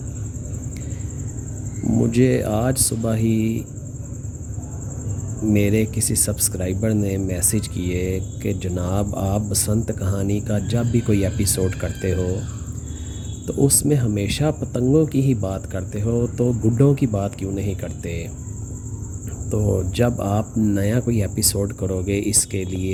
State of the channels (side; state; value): both; identical; correlation 1.00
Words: مجھے آج صبح ہی میرے کسی سبسکرائبر نے میسج کیے کہ جناب آپ بسنت کہانی کا جب بھی کوئی ایپیسوڈ کرتے ہو تو اس میں ہمیشہ پتنگوں کی ہی بات کرتے ہو، تو گڈوں کی بات کیوں نہیں کرتے؟ تو جب آپ نیا کوئی ایپیسوڈ کرو گے اس کے